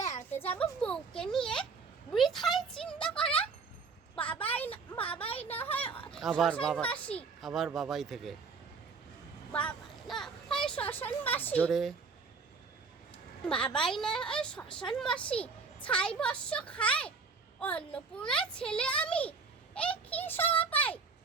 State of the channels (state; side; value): quieter; left; 4.9 dB